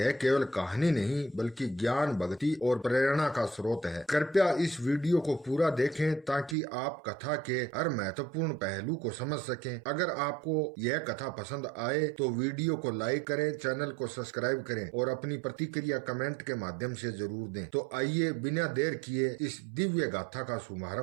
केवल कहानी नहीं बल्कि ज्ञान, भक्ति और प्रेरणा का स्रोत है। कृपया इस वीडियो को पूरा देखें ताकि आप कथा के हर महत्वपूर्ण पहलू को समझ सकें। अगर आपको यह कथा पसंद आए तो वीडियो को लाइक करें, चैनल को सब्सक्राइब करें और अपनी प्रतिक्रिया कमेंट के माध्यम से जरूर दें। तो आइए बिना देर किए इस दिव्य गाथा का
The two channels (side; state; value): left; drops out; at 6.6 s